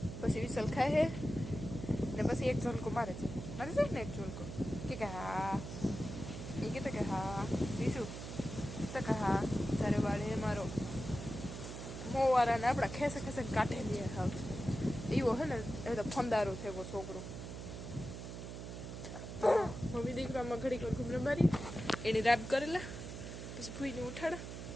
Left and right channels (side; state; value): right; noise; hum, 8 dB below the sound